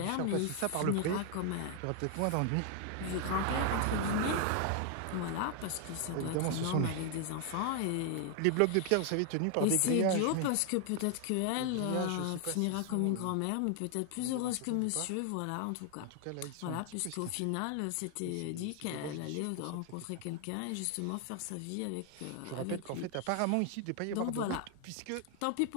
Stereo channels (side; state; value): both; different; correlation 0.00